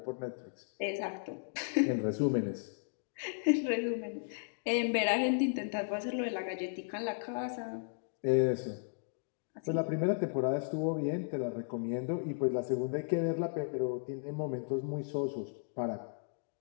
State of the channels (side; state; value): right; silent; digital silence